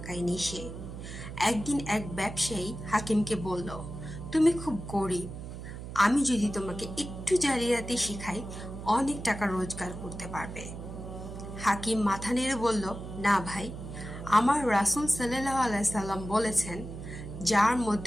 সে। একদিন এক ব্যবসায়ী হাকিমকে বলল, তুমি খুব গরিব, আমি যদি তোমাকে একটু জালিয়াতি শিখাই অনেক টাকা রোজগার করতে পারবে। হাকিম মাথা নেড়ে বলল, না ভাই, আমার রাসূল সাল্লাল্লাহু আলাইহি সাল্লাম বলেছেন, যার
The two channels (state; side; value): noise; right; hum, 10 dB below the sound